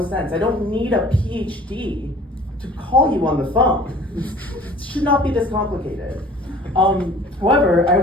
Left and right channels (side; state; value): both; normal; correlation 0.48